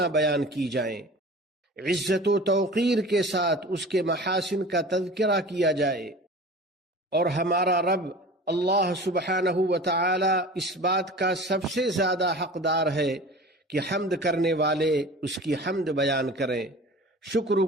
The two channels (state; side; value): normal; both; correlation 0.39